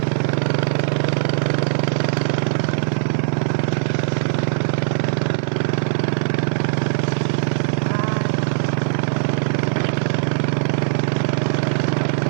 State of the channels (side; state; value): left; silent; 61 dB below the other